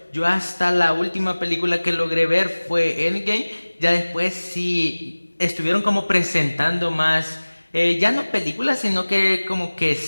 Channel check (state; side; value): inverted; both; correlation -1.00